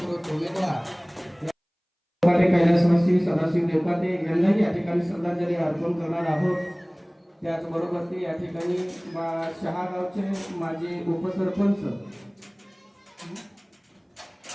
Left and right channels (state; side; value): identical; both; correlation 1.00